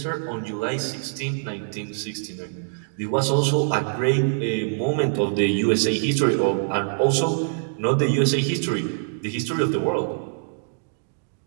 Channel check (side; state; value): left; silent; digital silence